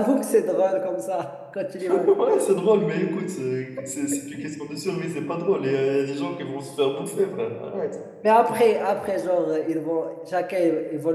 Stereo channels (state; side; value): identical; both; correlation 1.00